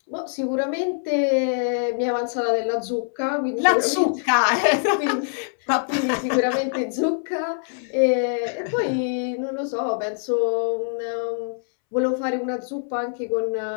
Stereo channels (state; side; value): silent; right; 63 dB below the other